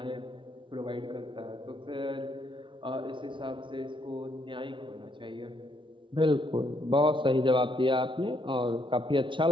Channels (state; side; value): late; left; 0.24 ms